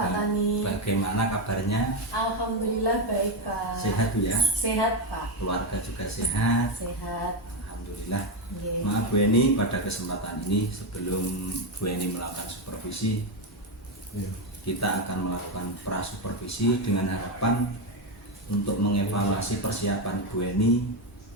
Tani. Bagaimana kabarnya? Alhamdulillah baik Pak. Sehat Bu ya? Sehat Pak. Keluarga juga sehat? Sehat. Alhamdulillah. Yeah. Maaf Bu Eni, pada kesempatan ini sebelum Bu Eni melakukan supervisi, kita akan melakukan prasupervisi dengan harapan untuk mengevaluasi persiapan Bu Eni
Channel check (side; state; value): both; normal; correlation 0.09